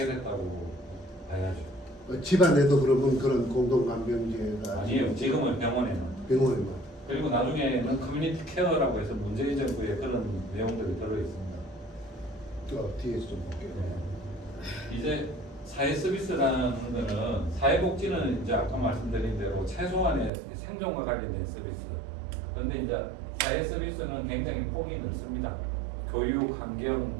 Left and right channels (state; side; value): drops out; left; at 20.3 s